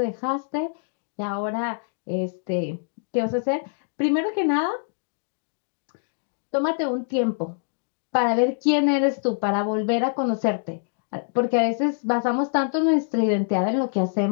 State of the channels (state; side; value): silent; right; digital silence